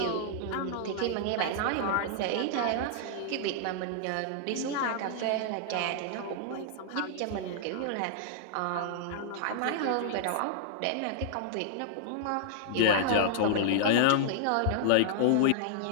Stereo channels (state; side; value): different; both; correlation -0.01